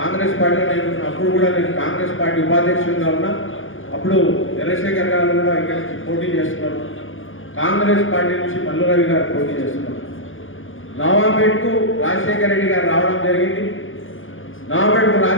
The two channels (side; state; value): right; late; 0.58 ms